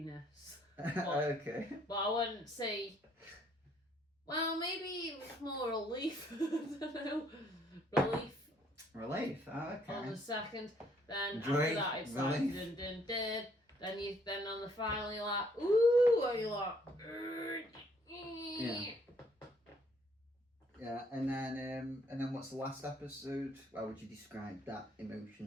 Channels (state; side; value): normal; both; correlation 0.65